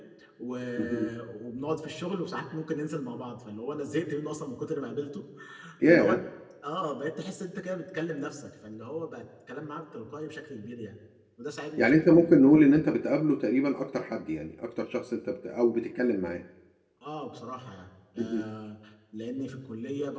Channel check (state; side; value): identical; both; correlation 1.00